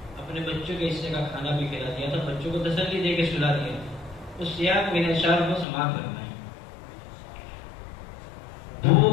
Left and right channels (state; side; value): drops out; right; at 5.7 s